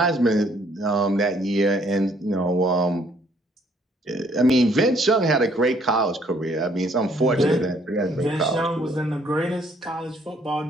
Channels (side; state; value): both; normal; correlation 0.64